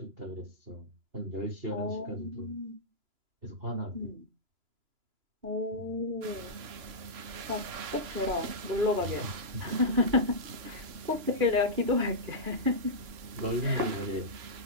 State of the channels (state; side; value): late; left; 3.0 ms